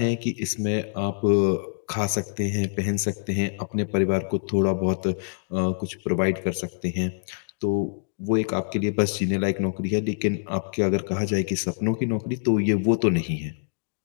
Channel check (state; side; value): silent; right; digital silence